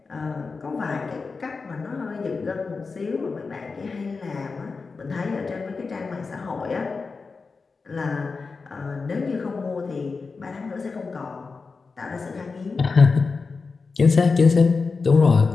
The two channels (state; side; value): quieter; right; 4.5 dB